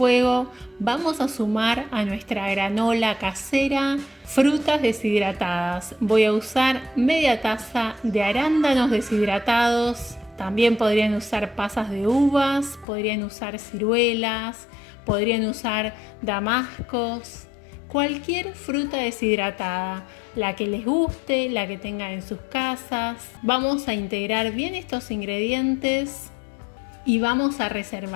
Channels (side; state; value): right; drops out; at 12.9 s